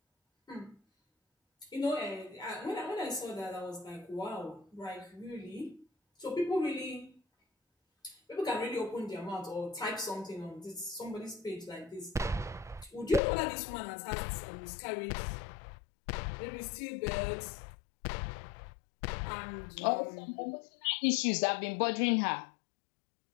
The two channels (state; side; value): drops out; right; at 13.2 s